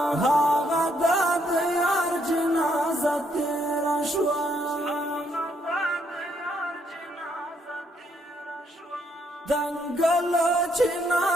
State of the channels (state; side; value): normal; both; correlation 0.72